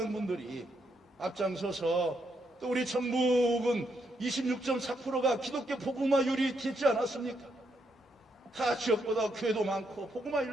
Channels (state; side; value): normal; both; correlation 0.78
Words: 분들이 앞장서서 또 우리 전북은 26.4%가 기독교 복음화율이 되지 않았습니까? 다 지역보다 교회도 많고